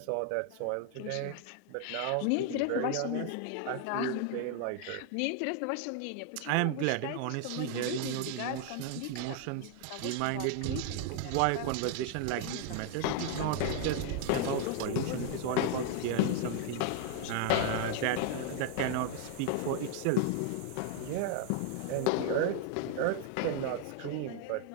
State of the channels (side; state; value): both; different; correlation 0.00